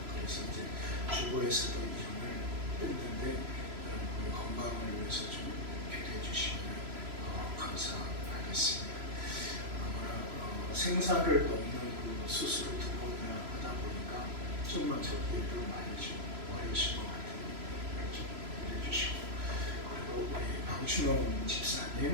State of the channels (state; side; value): late; left; 3.0 ms